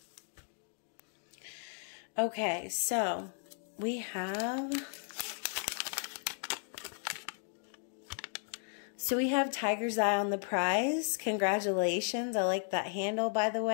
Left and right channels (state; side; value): silent; right; 54 dB below the other